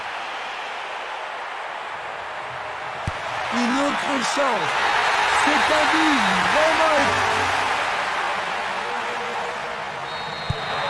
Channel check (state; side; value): identical; both; correlation 1.00